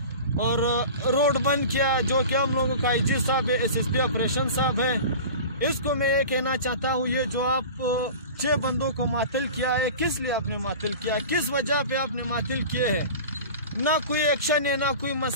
और रोड बंद किया। जो कि हम लोगों का IG साहब है, SSP ऑपरेशन साहब है, इसको मैं ये कहना चाहता हूँ, ये जो आप 6 बंदों को मातल किया है, किस लिए आपने मातल किया, किस वजह पे आपने मातल किए हैं? ना कोई एक्शन है, ना कोई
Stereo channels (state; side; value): inverted; both; correlation -0.36